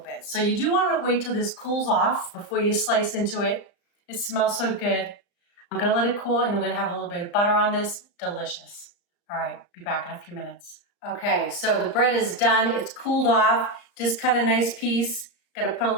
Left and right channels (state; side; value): late; right; 35 ms